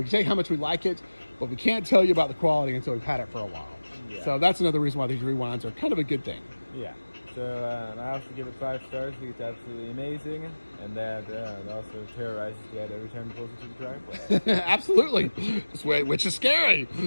can tell you how much we like it, but we can't tell you about the quality until we've had it for a while. Yeah. So that's another reason why these rewinds are kind of a good thing. Yeah. So I also give it 5 stars. I think it's absolutely amazing, and that it also terrorizes Dad every time he pulls into the driveway. Absolutely, which is scary.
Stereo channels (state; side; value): inverted; both; correlation -1.00